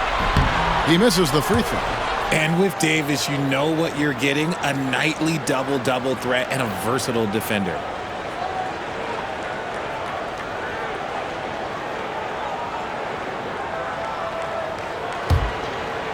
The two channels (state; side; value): identical; both; correlation 1.00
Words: He misses the free throw. And with Davis, you know what you're getting, a nightly double-double threat and a versatile defender.